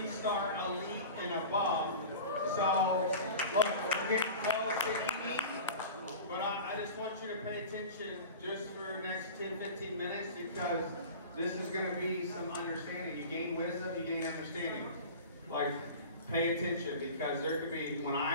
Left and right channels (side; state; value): both; inverted; correlation -0.35